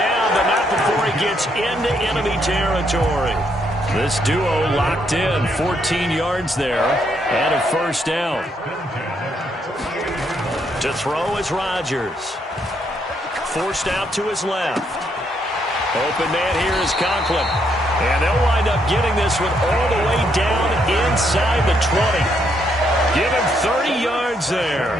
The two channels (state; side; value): normal; both; correlation 0.74